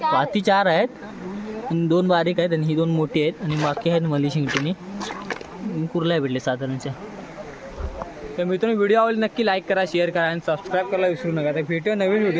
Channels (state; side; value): identical; both; correlation 1.00